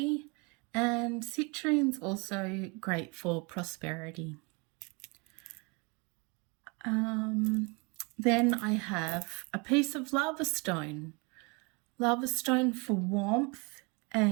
and citrine's also great for prosperity. Then I have a piece of lava stone for warmth,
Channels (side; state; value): left; quieter; 29.9 dB